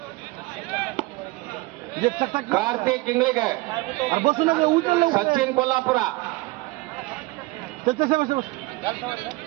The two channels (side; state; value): left; quieter; 22.3 dB